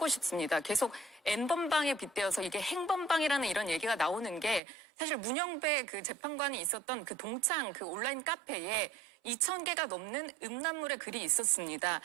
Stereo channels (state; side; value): drops out; left; at 4.6 s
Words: 싶습니다. 계속 N번방에 빗대어서 이게 행번방이라는 이런 얘기가 나오는 게 사실 문영배 그 재판관이 있었던 그 동창 그 온라인 카페에 2,000개가 넘는 음란물의 글이 있었습니다.